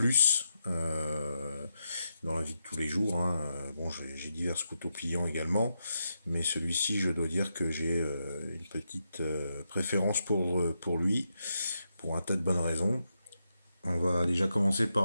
dans la vie de tous les jours. Bon, j'ai divers couteaux pliants également, mais celui-ci, je dois dire que j'ai une petite préférence pour lui, pour un tas de bonnes raisons. On va déjà commencer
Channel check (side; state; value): both; inverted; correlation -0.84